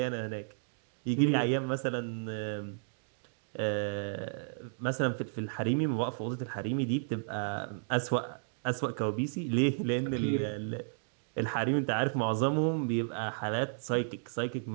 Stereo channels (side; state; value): left; silent; digital silence